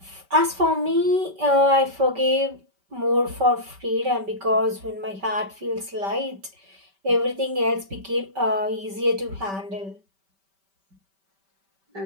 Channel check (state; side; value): late; left; 5.1 ms